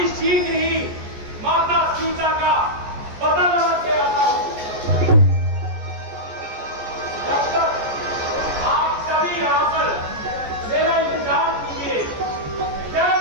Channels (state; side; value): late; left; 14 ms